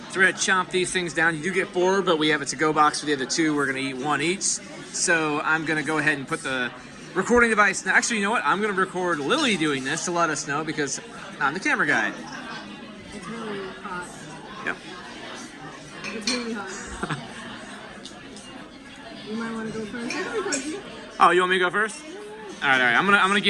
So we're gonna chomp these things down. You do get 4, but we have a to-go box for the other 2. We're gonna eat 1 each. So I'm gonna go ahead and put the recording device. Now, actually, you know what? I'm gonna record Lily doing this to let us know because I'm the camera guy. It's really hot. Yep. It's really hot. You might want to go first. Oh, you want me to go first? All right. I'm gonna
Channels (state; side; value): identical; both; correlation 1.00